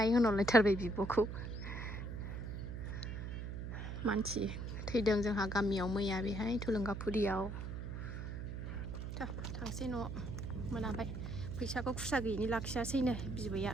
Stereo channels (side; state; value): right; noise; hum, 5 dB below the sound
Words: होनहरलायथारबाय बिब'खौ मानसि थैदों जोंहा गामियाव मैया बेहाय थुलुंगाफुरियाव थांसै न' मोनाबाय फैसाखौ खुस्रा गैयिनि लाखियासैनो बिबैया